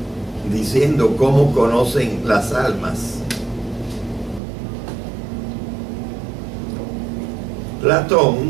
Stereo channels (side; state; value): left; drops out; at 4.4 s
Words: diciendo cómo conocen las almas.